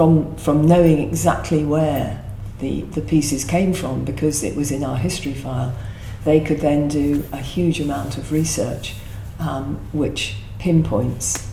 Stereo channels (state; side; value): identical; both; correlation 1.00